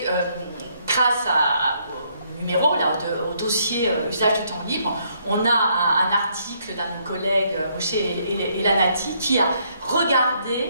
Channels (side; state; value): both; inverted; correlation -0.71